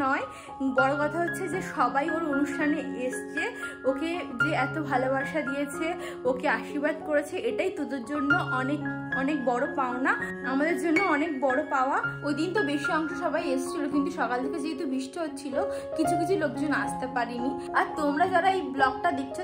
নয়, বড় কথা হচ্ছে যে সবাই ওর অনুষ্ঠানে এসছে, ওকে যে এত ভালোবাসা দিয়েছে, ওকে আশীর্বাদ করেছে, এটাই তোদের জন্য অনেক অনেক বড় পাওনা, আমাদের জন্য অনেক বড় পাওয়া। ওই দিন তো বেশি অংশ সবাই এসেছিল, কিন্তু সকাল থেকে যেহেতু বৃষ্টি হচ্ছিল কিছু কিছু লোকজন আসতে পারিনি। আর তোমরা যারা এই ব্লগটা দেখছো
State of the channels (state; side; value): identical; both; correlation 1.00